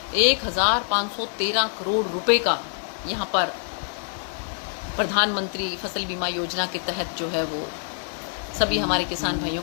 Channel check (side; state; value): right; silent; digital silence